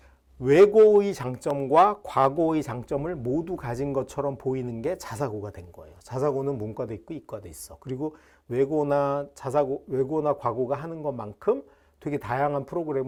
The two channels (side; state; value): both; identical; correlation 1.00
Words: 외고의 장점과 과고의 장점을 모두 가진 것처럼 보이는 게 자사고가 된 거예요. 자사고는 문과도 있고 이과도 있어. 그리고 외고나 과고가 하는 것만큼 되게 다양한